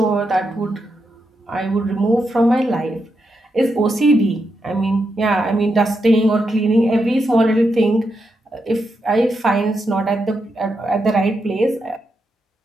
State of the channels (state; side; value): normal; both; correlation 0.84